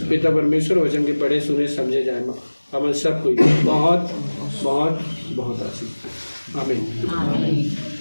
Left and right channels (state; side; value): inverted; both; correlation -1.00